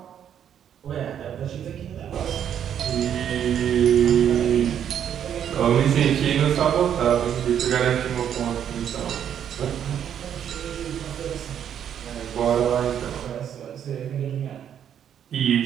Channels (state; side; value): quieter; left; 9.2 dB